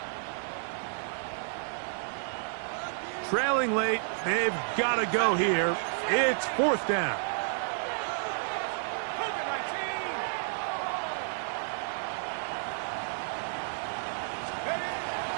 Trailing late, they've got to go here. It's 4th down.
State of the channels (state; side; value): silent; left; digital silence